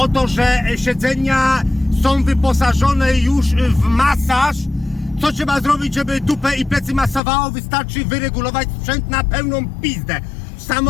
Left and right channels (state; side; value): drops out; right; at 7.2 s